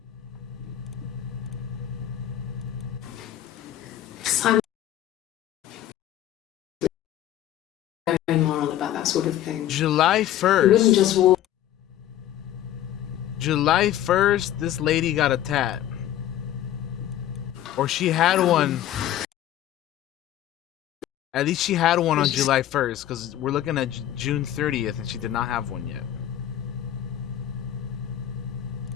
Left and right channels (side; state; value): right; quieter; 12.1 dB